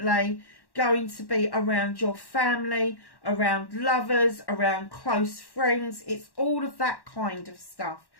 going to be around your family, around lovers, around close friends. It's all of that kind of stuff.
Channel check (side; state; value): right; late; 1.1 ms